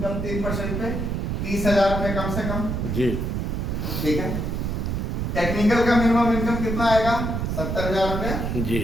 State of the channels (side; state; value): right; noise; rumble, 2 dB below the sound